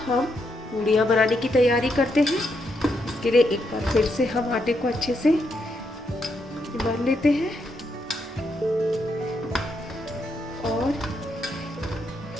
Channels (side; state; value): both; normal; correlation 0.79